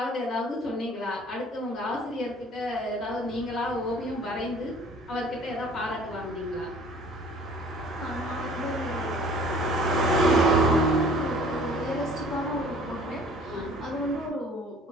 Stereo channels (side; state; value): both; normal; correlation 0.51